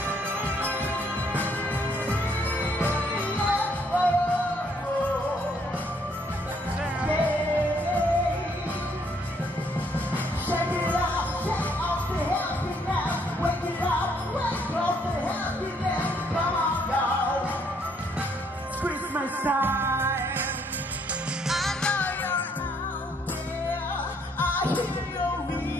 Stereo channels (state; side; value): normal; both; correlation 0.68